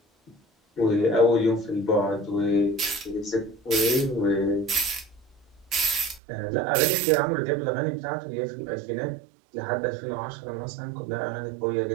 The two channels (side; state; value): left; drops out; at 6.2 s